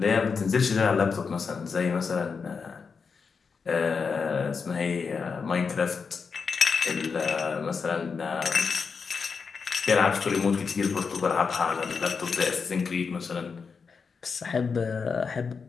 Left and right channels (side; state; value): right; quieter; 5.4 dB